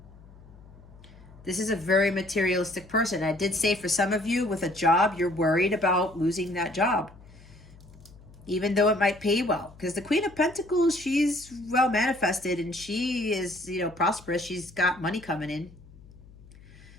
This is a very materialistic person. I did say for some of you with a job, you're worried about losing that job, even though it might pay well. Because the Queen of Pentacles, she's well manifested and she is, prosperous. She's got money coming in.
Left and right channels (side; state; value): left; noise; hum, 22 dB below the sound